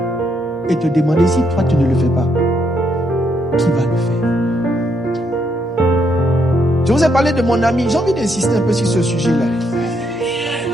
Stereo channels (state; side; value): normal; both; correlation 0.75